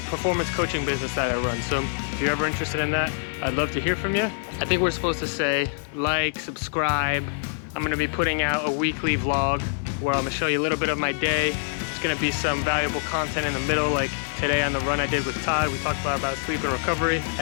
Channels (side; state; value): right; silent; digital silence